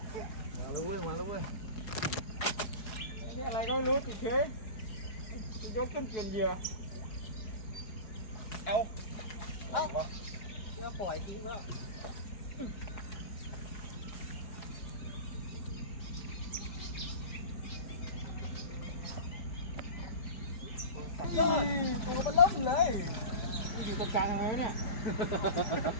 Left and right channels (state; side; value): late; right; 4.7 ms